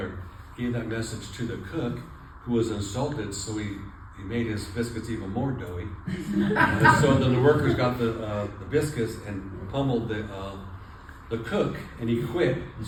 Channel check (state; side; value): identical; both; correlation 1.00